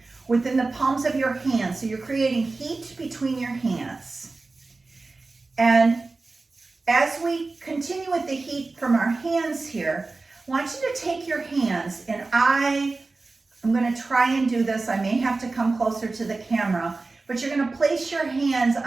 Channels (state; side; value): quieter; left; 3.6 dB